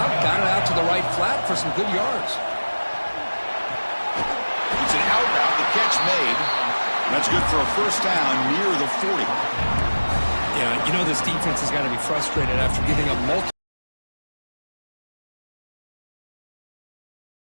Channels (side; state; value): both; inverted; correlation -1.00